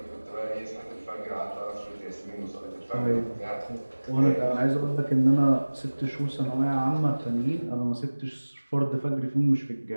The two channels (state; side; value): inverted; both; correlation -1.00